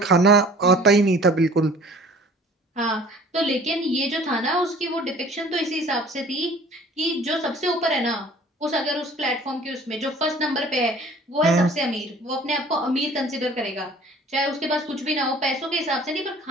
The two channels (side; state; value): both; normal; correlation 0.49